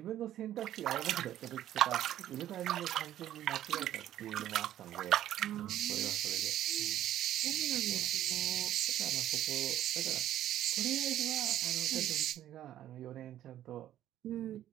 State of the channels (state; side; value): quieter; left; 12.2 dB